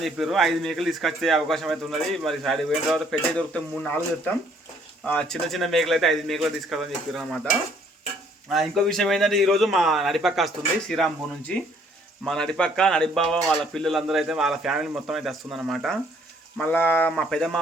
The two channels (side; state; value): both; normal; correlation 0.63